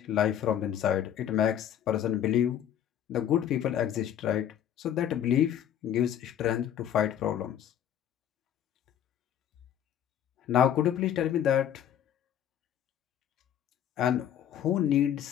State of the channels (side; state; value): right; quieter; 10.1 dB